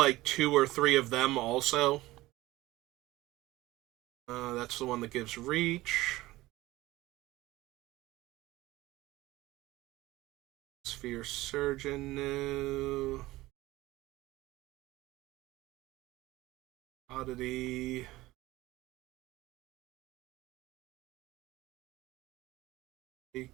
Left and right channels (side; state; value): left; quieter; 18.1 dB